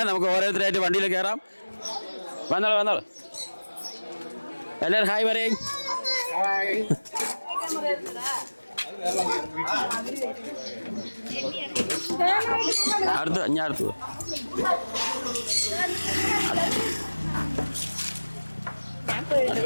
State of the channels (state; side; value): inverted; both; correlation -1.00